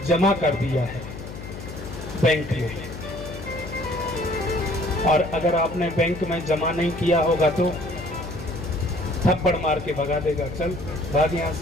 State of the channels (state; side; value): noise; left; hum, 11 dB below the sound